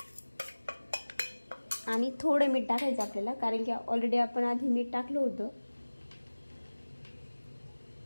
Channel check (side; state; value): both; inverted; correlation -1.00